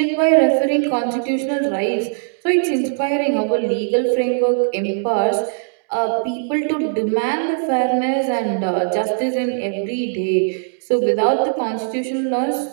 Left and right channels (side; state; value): left; silent; digital silence